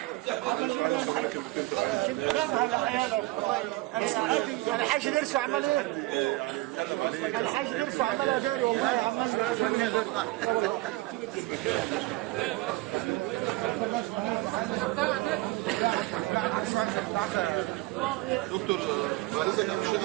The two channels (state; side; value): quieter; left; 20.3 dB